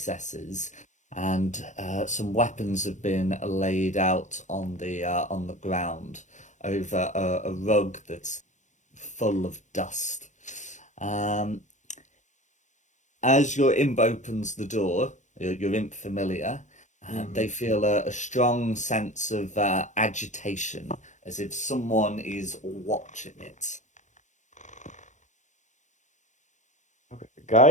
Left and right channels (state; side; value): late; right; 0.35 ms